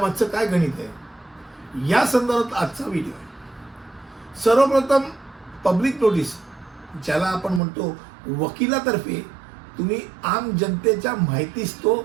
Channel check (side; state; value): left; drops out; at 7.6 s